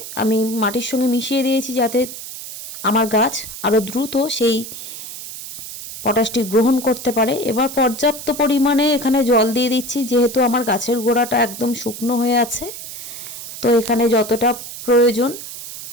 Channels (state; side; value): noise; right; hiss, 11 dB below the sound